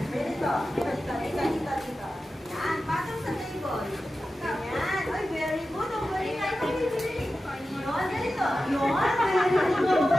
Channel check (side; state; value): both; normal; correlation 0.93